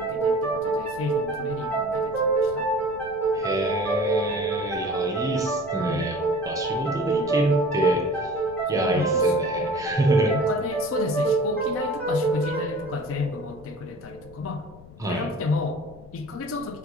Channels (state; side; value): noise; left; rumble, 20 dB below the sound